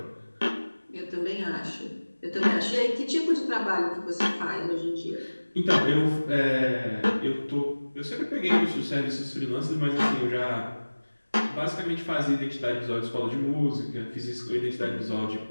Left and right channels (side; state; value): both; inverted; correlation -1.00